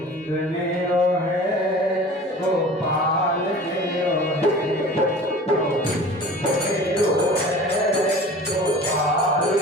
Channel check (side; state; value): both; normal; correlation 0.41